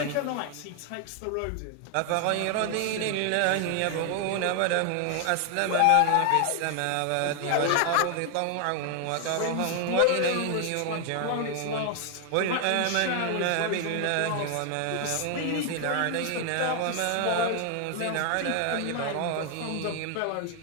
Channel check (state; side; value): different; both; correlation 0.00